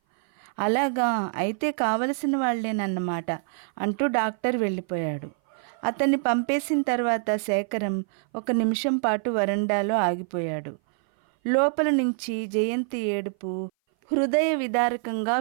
అలాగా, అయితే కావలసిన వాళ్ళేనన్నమాట అంటూ డాక్టర్ వెళ్ళిపోయాడు. అతన్ని పంపేసిన తర్వాత శేఖరం ఒక నిమిషం పాటు వరండాలో ఆగిపోయాడు. లోపల నుంచి జయంతి ఏడుపు హృదయ విదారకంగా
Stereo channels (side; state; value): left; silent; 58 dB below the other